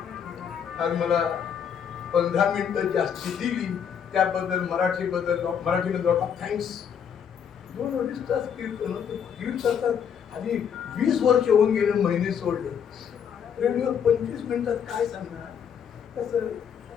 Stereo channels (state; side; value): quieter; right; 7.8 dB